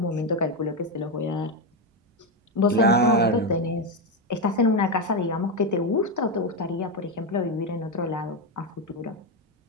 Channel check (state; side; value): normal; both; correlation 0.09